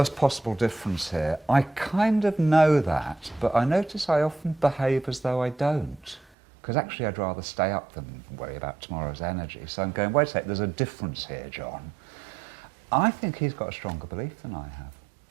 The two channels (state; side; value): drops out; left; at 6.2 s